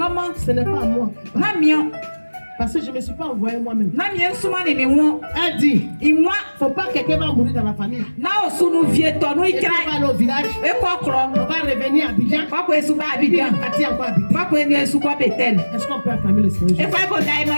n'est pas à moi. Parce que je ne me suis pas envoyé moi-même. Elle dit, il ne faut pas que quelqu'un va mourir dans la famille. Et on va aller au village. On va revenir à Abidjan. Est-ce qu'on peut acclamer le Seigneur?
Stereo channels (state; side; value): inverted; both; correlation -1.00